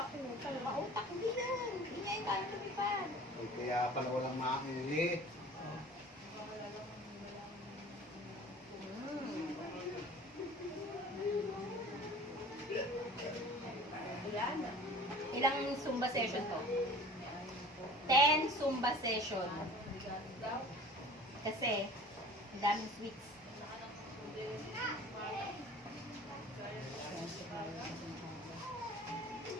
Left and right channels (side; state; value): both; normal; correlation 0.44